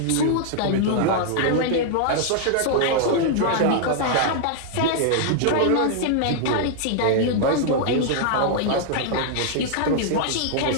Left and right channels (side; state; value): both; different; correlation -0.01